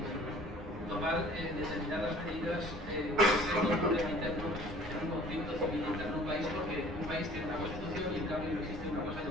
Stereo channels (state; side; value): normal; both; correlation 0.51